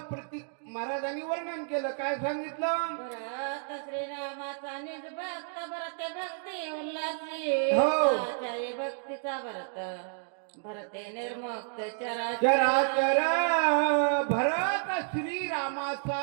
प्रतीक महाराजांनी वर्णन केलं. काय सांगितलं? भरत श्रीरामाचा निज भक्त, भरते भक्ती उल्हासी, हो. आचार्य भक्तीचा भरत, भरते निर्मुक्त चराचर. भरत श्रीरामाचा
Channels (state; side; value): silent; left; digital silence